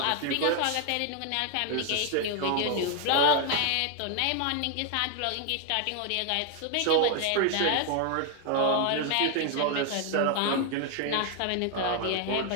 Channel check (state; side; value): different; both; correlation 0.00